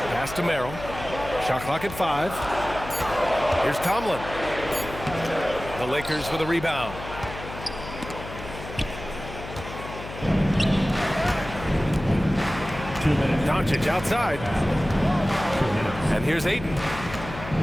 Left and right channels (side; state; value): left; noise; hum, 11 dB below the sound